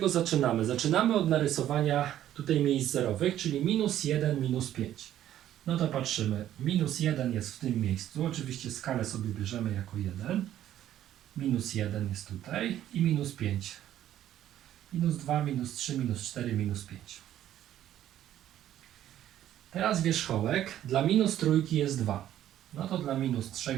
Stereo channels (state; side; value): quieter; left; 11.9 dB